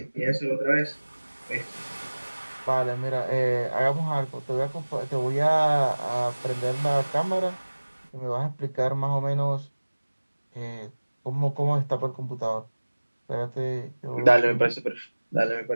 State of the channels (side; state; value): both; inverted; correlation -1.00